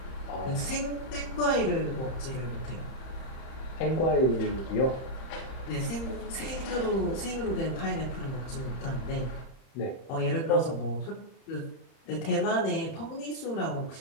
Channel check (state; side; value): late; right; 31 ms